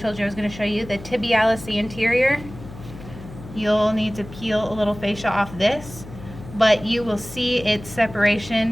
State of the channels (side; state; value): left; noise; hum, 15 dB below the sound